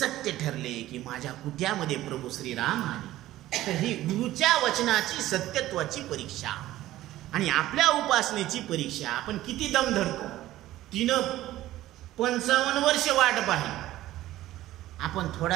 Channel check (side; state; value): left; quieter; 15.1 dB